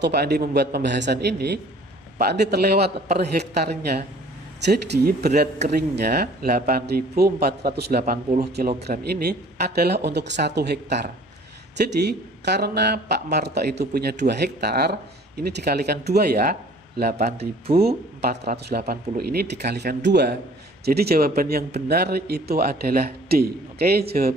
Pak Andi membuat pembahasan ini, Pak Andi terlewat per hektarnya. Jadi berat keringnya 8.480 kg ini adalah untuk 1 hektar. Jadi karena Pak Marto itu punya 2 hektar, ini dikalikan 2 ya. 8.480 ini dikalikan 2. Jadi jawaban yang benar itu adalah D. Oke,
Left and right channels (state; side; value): normal; both; correlation 0.52